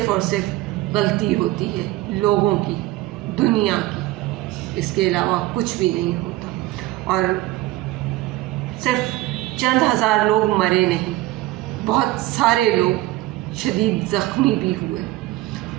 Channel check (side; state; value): left; quieter; 17.2 dB